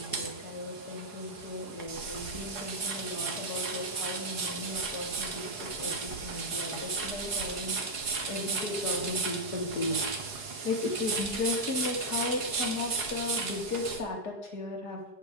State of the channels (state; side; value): late; right; 4.8 ms